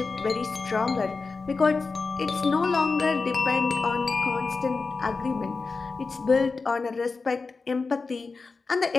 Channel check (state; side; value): quieter; right; 4.3 dB